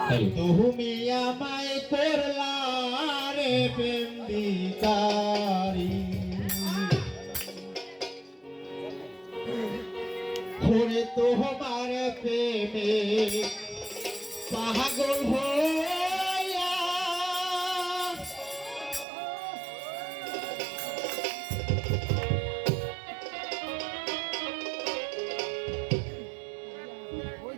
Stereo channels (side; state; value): left; drops out; at 19.1 s